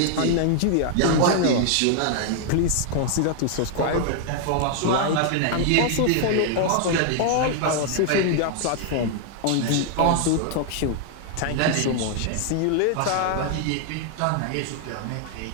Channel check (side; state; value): both; different; correlation 0.00